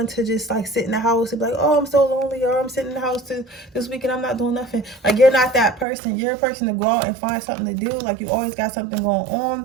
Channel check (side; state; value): left; drops out; at 5.9 s